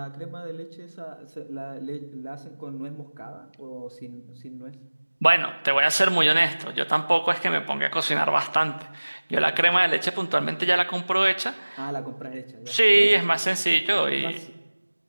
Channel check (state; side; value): inverted; both; correlation -1.00